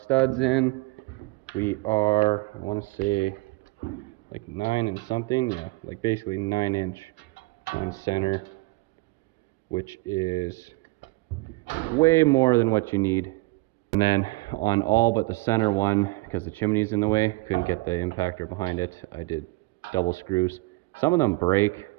in. We are, I want to say, like 9 and something. Yeah, like basically 9 inch on center, which is way more than what you need. And then on all but the center one, because the chimney's in the way, couldn't get the impactor behind it, I did double screws. Some of them break.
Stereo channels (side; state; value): left; quieter; 23.5 dB